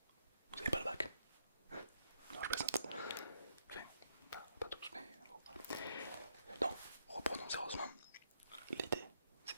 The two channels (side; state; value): both; inverted; correlation -0.76